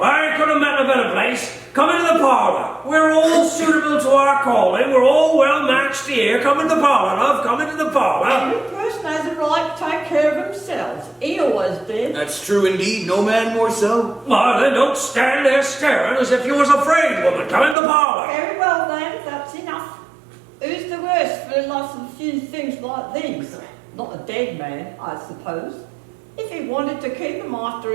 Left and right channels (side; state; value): left; drops out; at 17.8 s